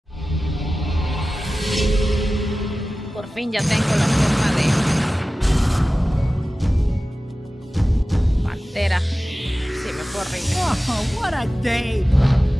Por fin ya tengo la forma de pantera. Sí, me fue horrible. Oh, what a day!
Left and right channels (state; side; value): normal; both; correlation 0.96